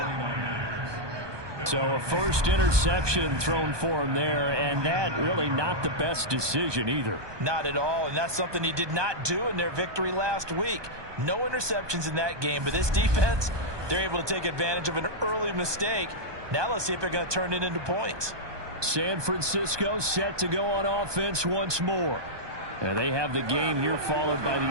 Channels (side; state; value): left; late; 1.2 ms